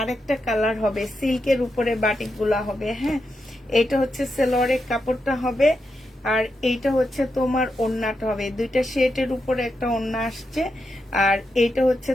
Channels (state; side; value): normal; both; correlation 0.85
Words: কালার হবে, সিল্কের উপরে বাটিক গুলা হবে, হ্যাঁ এটা হচ্ছে সেলোয়ারের কাপড়টা হবে, আর এইটা হচ্ছে তোমার ওড়নাটা হবে। দুইটা শেডের উপরে একটা ওড়না আসছে, আর এইটা হচ্ছে